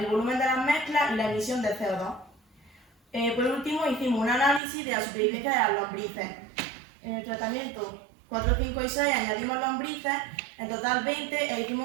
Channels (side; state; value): left; drops out; at 4.6 s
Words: volumen de las mezclas y la emisión de CO2. Por último, hicimos un análisis de la supervivencia de las lombrices. En el tratamiento 4, 5 y 6 añadimos lombrices, en total 20, e